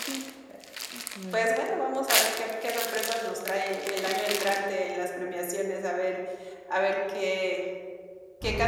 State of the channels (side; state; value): both; identical; correlation 1.00